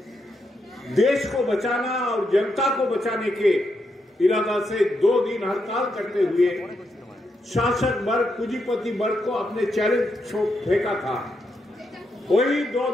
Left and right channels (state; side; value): normal; both; correlation 0.82